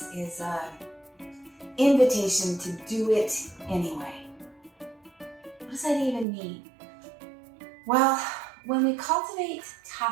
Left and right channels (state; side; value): drops out; left; at 6.2 s